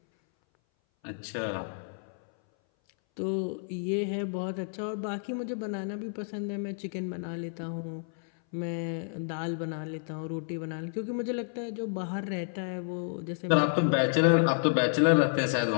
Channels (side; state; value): right; silent; 58 dB below the other